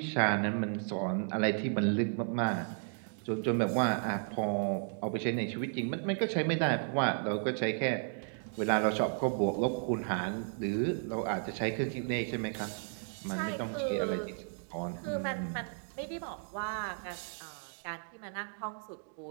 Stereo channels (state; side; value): silent; left; 55 dB below the other